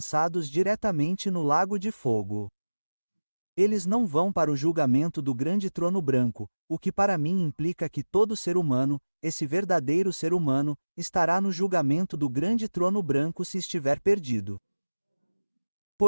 diretamente no lago de fogo. Eles não vão para o julgamento do grande trono branco, o que para mim implica que todo ser humano, esse verdadeiro ser humano, estará no julgamento do grande trono branco se estiver perdido.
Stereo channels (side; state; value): both; inverted; correlation -1.00